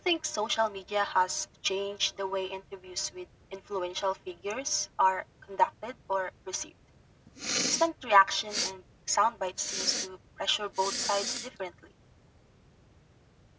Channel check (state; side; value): identical; both; correlation 1.00